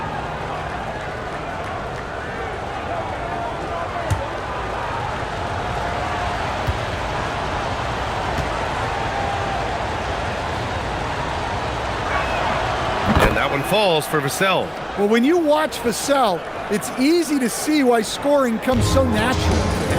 That one falls for Vassell. Well, when you watch Vassell, it's easy to see why scoring comes so natural.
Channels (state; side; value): identical; both; correlation 1.00